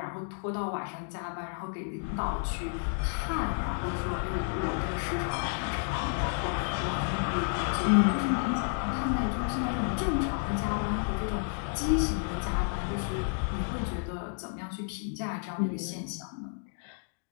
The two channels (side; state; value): right; silent; 57 dB below the other